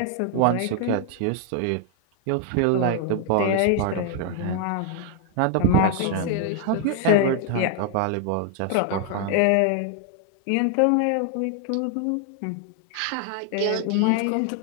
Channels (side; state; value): both; different; correlation 0.00